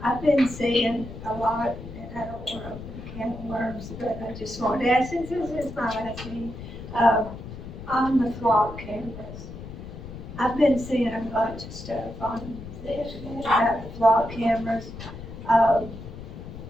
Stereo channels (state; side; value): noise; left; rumble, 12 dB below the sound